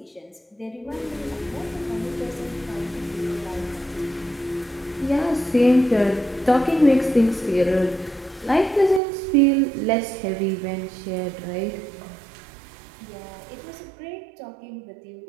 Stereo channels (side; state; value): left; drops out; at 9.0 s